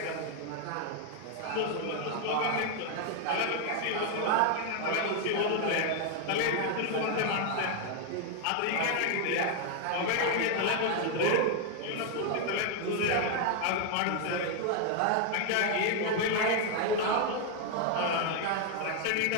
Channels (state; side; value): different; both; correlation 0.00